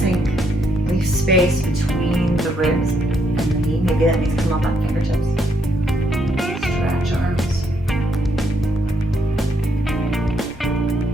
Leave space between the ribs and the knee. Maybe that needs to come up on fingertips. Stretch arms.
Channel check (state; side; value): normal; both; correlation 0.75